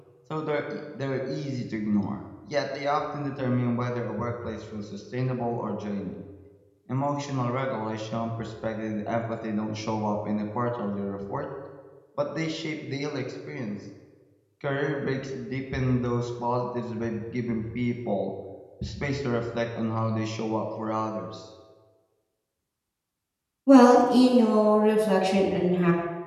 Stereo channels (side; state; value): both; identical; correlation 1.00